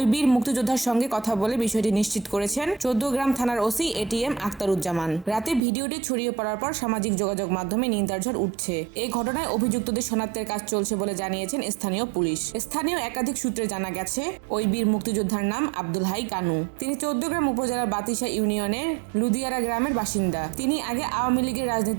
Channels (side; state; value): left; drops out; at 5.6 s